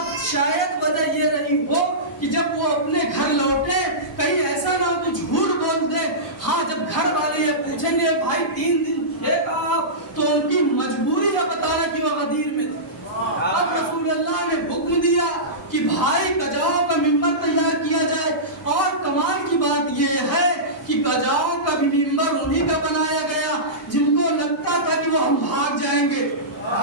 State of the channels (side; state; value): both; normal; correlation -0.18